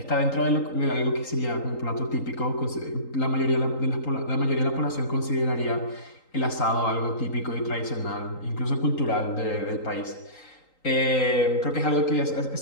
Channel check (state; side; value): late; right; 3.8 ms